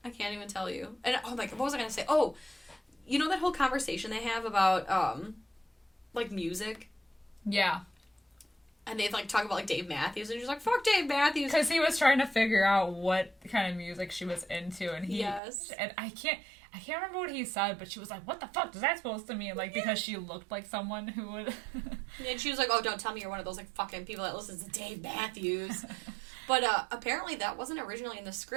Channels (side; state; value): left; drops out; at 15.4 s